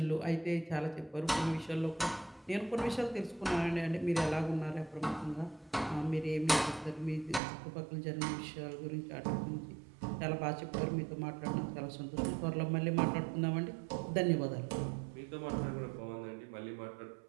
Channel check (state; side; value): drops out; left; at 7.4 s